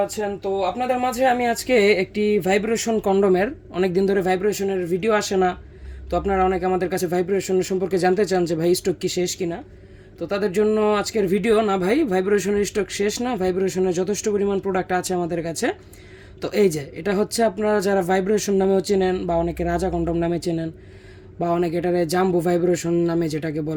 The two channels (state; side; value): identical; both; correlation 1.00